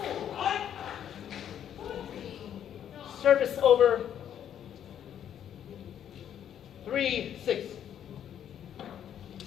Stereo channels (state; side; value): quieter; right; 9.7 dB